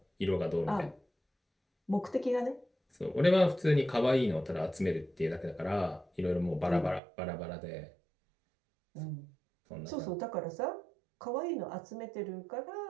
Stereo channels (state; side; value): drops out; left; at 7.0 s